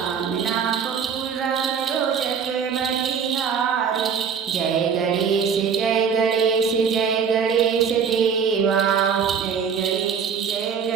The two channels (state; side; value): quieter; left; 6.8 dB